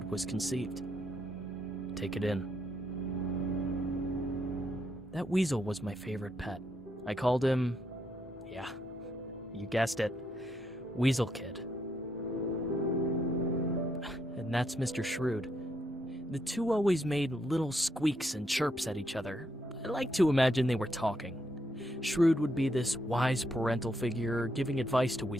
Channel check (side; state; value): both; normal; correlation 0.77